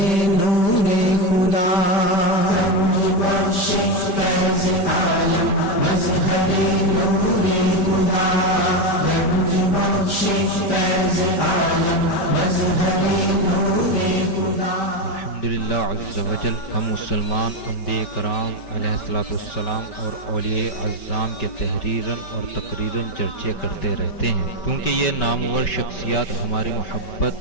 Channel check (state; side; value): late; right; 5.2 ms